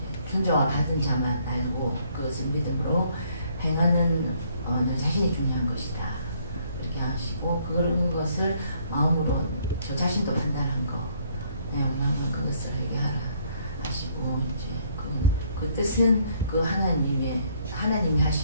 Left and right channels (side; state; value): both; inverted; correlation -0.66